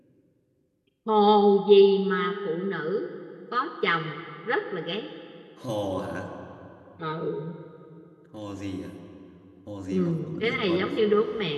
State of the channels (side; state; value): both; identical; correlation 1.00